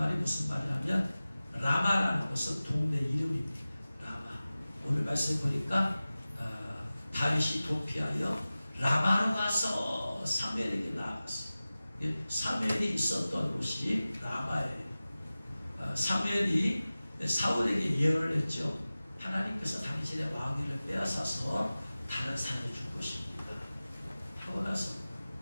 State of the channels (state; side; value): inverted; both; correlation -0.97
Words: 무슨 말이냐면 라마라는 것은 동네 이름입니다. 라마. 오늘 말씀 보니까 다윗이 도피하여 라마로 가서 사무엘에게 나아갔어요. 사무엘이 있었던 곳이 라마예요. 사무엘이 사울에게 예언을 했죠. 하나님께서 당신의 왕위를 빼앗아서 다른 사람을 줄 것입니다 하고 나서